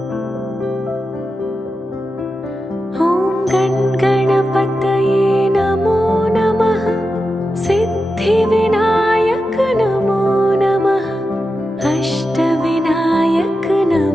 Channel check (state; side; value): normal; both; correlation 0.90